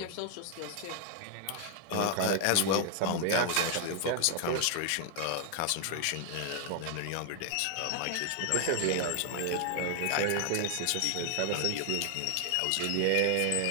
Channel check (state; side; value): different; both; correlation 0.00